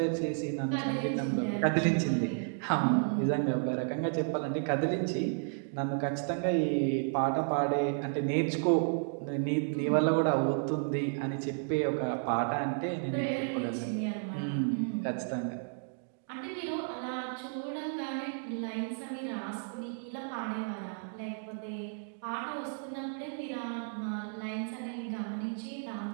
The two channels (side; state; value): left; silent; digital silence